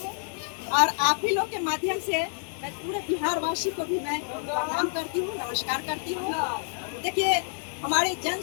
और आप ही लोग के माध्यम से मैं पूरे बिहार वासी को भी मैं प्रणाम करती हूँ, नमस्कार करती हूँ। देखिए, हमारे जन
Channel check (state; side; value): silent; right; digital silence